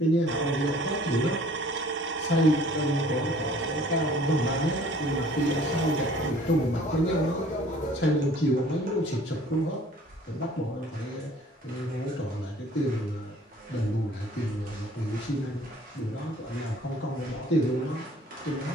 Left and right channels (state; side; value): normal; both; correlation 0.53